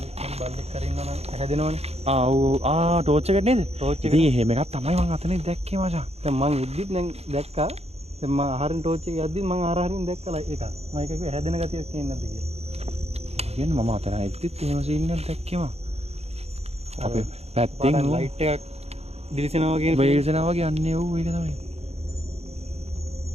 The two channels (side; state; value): left; late; 0.30 ms